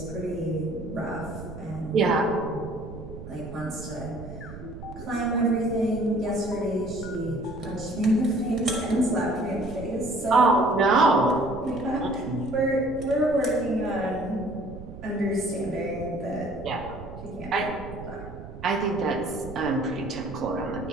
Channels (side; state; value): right; noise; rumble, 13 dB below the sound